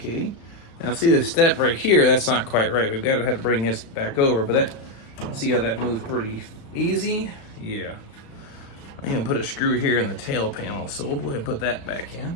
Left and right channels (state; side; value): late; right; 35 ms